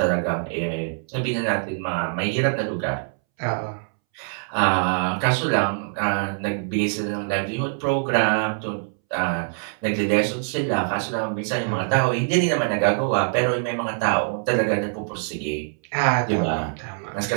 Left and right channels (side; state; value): left; silent; 63 dB below the other